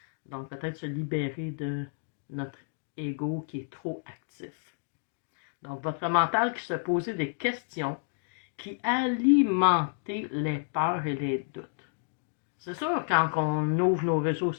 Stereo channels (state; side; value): silent; right; 58 dB below the other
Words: Donc, peut-être se libérer de notre ego qui est trop actif. Donc, votre mental qui se posait des questions qui alimentaient les peurs et les doutes. C'est sûr, quand on ouvre nos réseaux